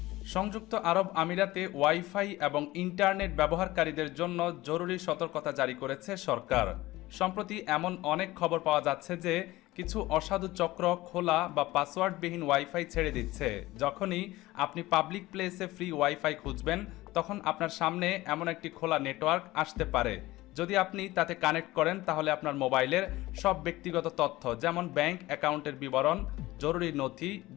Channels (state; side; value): quieter; right; 18.3 dB